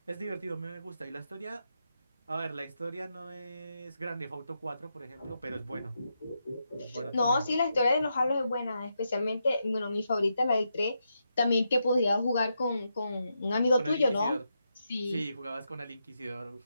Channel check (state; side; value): inverted; both; correlation -0.84